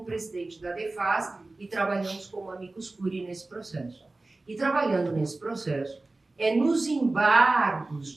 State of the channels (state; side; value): quieter; left; 3.1 dB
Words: presidente da DEFAS e trabalhamos como amicus curiae nesse processo. E trabalhando nesse processo, é nos embargos